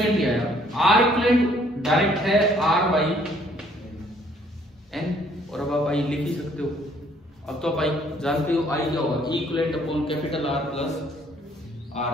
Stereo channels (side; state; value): both; normal; correlation 0.63